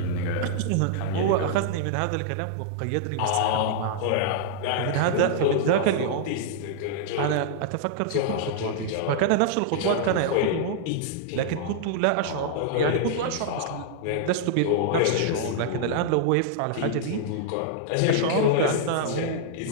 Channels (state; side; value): different; both; correlation -0.01